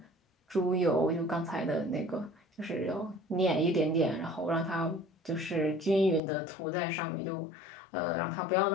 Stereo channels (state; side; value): drops out; right; at 6.2 s